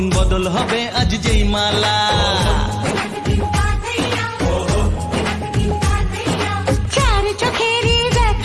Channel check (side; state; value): both; identical; correlation 1.00